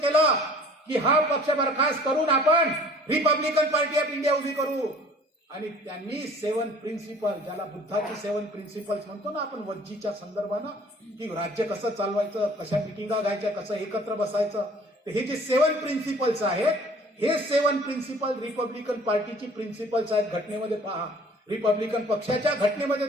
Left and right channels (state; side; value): normal; both; correlation 0.51